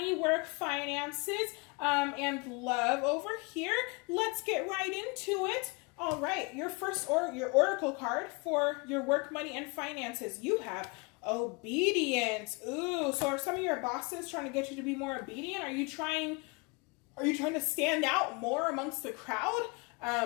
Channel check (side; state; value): right; quieter; 30.1 dB